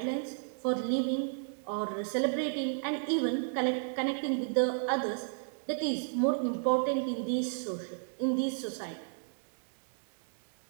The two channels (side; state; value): left; silent; digital silence